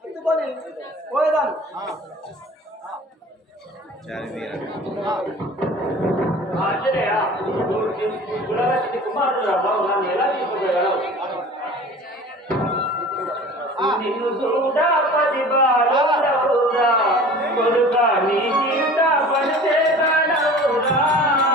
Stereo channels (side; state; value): both; normal; correlation 0.42